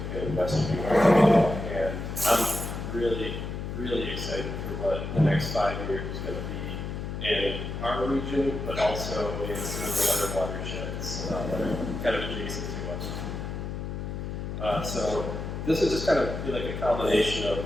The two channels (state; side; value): noise; left; hum, 5 dB below the sound